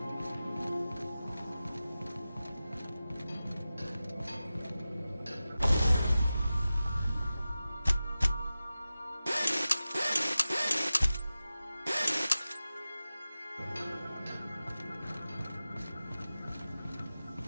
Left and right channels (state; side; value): inverted; both; correlation -0.95